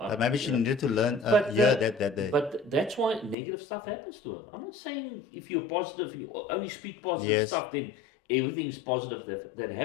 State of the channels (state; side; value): drops out; right; at 3.4 s